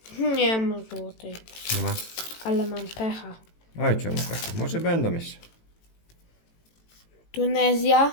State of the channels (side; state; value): right; late; 18 ms